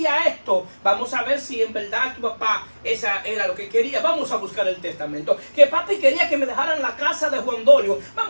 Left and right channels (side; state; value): both; inverted; correlation -1.00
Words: esto, vamos a ver si en verdad tu papá esa era lo que quería, vamos a buscar el testamento. Que papi quería que me dejaran la casa de Juan Dolio,